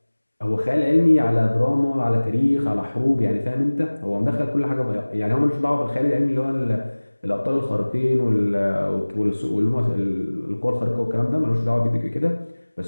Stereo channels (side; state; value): both; inverted; correlation -1.00